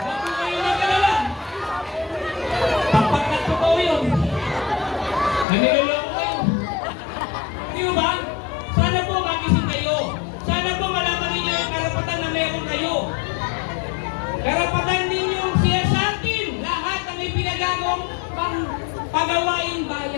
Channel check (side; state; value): right; drops out; at 5.5 s